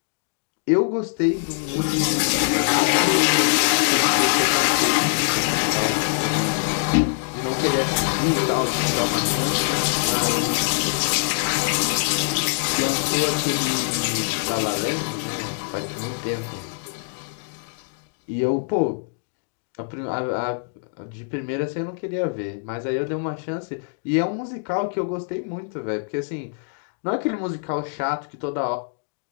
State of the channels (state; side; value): silent; right; digital silence